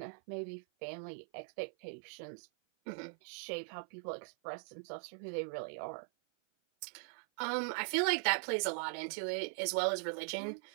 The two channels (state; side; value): silent; left; 51 dB below the other